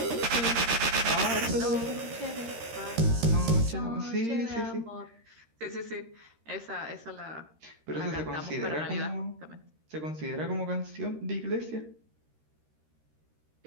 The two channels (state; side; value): late; left; 13 ms